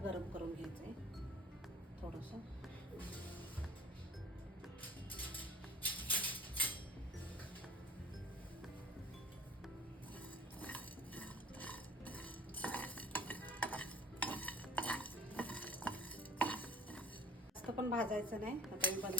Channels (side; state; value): both; normal; correlation 0.46